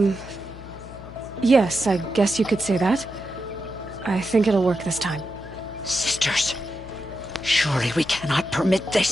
Yes, I guess you could say that. I think it'll work this time. Sisters, surely we cannot permit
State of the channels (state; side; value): noise; left; hum, 15 dB below the sound